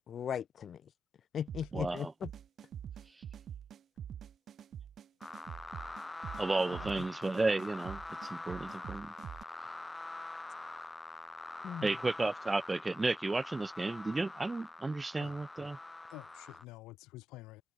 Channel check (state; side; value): normal; both; correlation 0.93